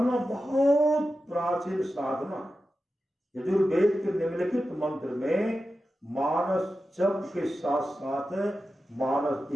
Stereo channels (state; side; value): normal; both; correlation 0.92